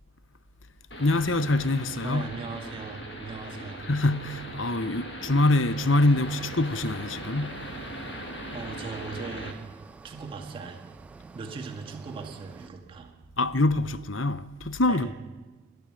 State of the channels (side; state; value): both; normal; correlation 0.57